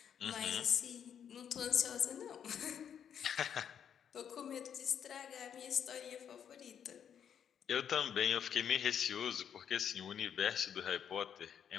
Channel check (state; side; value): quieter; right; 8.4 dB